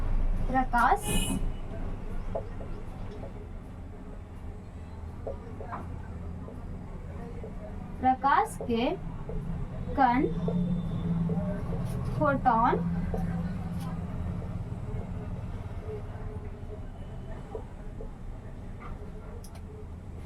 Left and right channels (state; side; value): identical; both; correlation 1.00